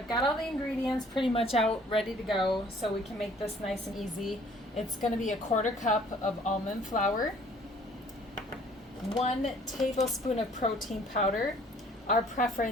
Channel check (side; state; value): both; normal; correlation 0.56